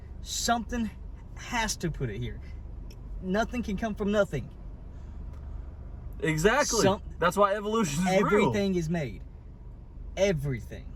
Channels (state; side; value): identical; both; correlation 1.00